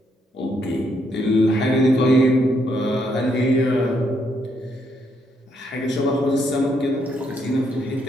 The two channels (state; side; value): normal; both; correlation 0.75